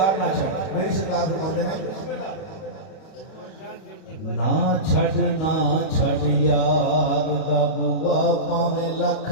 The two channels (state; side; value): late; right; 31 ms